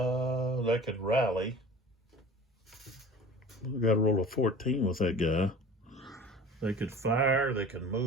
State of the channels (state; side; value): normal; both; correlation 0.41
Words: could rally. We got to roll a 14 with that guy. They could fire. They can